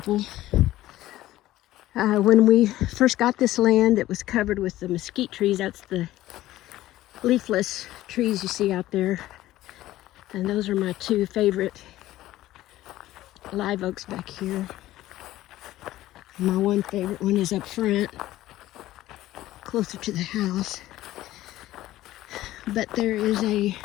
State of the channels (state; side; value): quieter; right; 15.3 dB